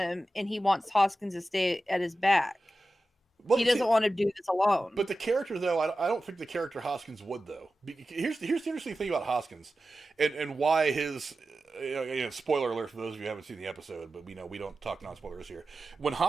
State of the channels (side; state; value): both; normal; correlation 0.93